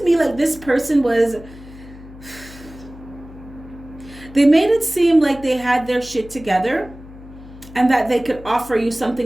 me like this person they made it seem like they had their shit together, and that they could offer you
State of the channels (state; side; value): noise; left; hum, 18 dB below the sound